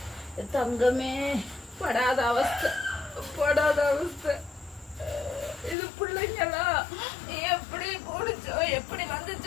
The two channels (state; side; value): drops out; right; at 5.8 s